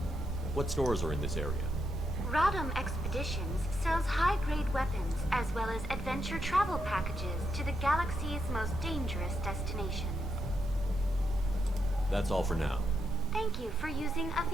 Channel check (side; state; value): both; normal; correlation 0.82